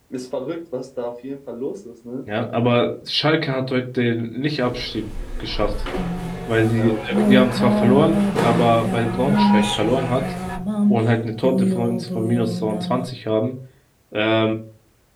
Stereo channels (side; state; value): both; identical; correlation 1.00